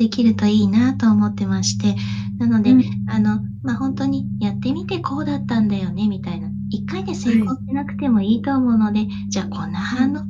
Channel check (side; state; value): both; identical; correlation 1.00